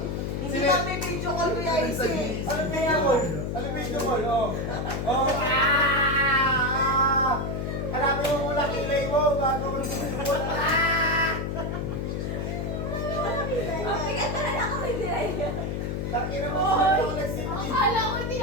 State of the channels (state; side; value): noise; left; hum, 2 dB below the sound